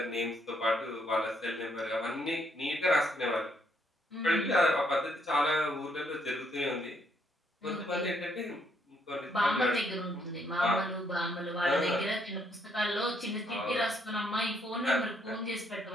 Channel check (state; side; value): normal; both; correlation 0.72